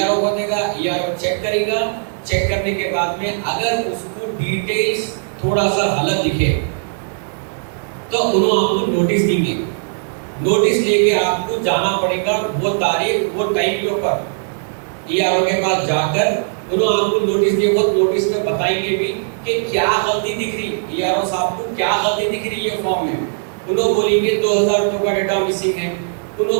को देगा, ईआरओ चेक करेगा। चेक करने के बाद में अगर उसको डिटेल्स थोड़ा सा गलत दिखे तो उन्होंने आपको नोटिस देंगे। नोटिस लेके आपको जाना पड़ेगा वो तारीख वो टाइम के ऊपर ईआरओ के पास जाकर उन्होंने आपको नोटिस दिया। वो नोटिस में बताएंगे भी कि क्या गलती दिख रही, ईआरओ साहब को क्या गलती दिख रही है फॉर्म में। उन्होंने बोलेंगे 2002 का डेटा मिसिंग है,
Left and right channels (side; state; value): left; silent; digital silence